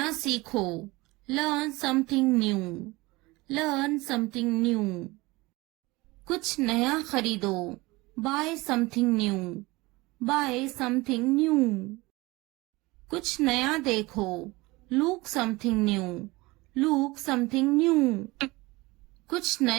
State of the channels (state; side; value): quieter; left; 22.2 dB